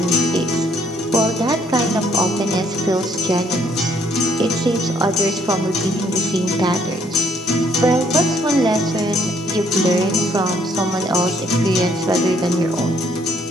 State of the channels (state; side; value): normal; both; correlation 0.66